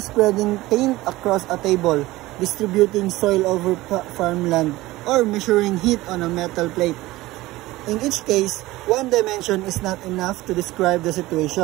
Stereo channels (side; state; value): left; quieter; 18.4 dB